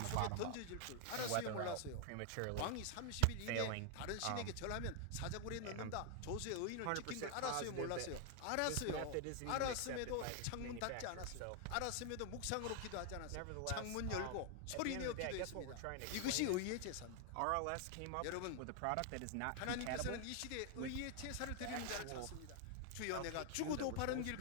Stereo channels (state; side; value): different; both; correlation 0.00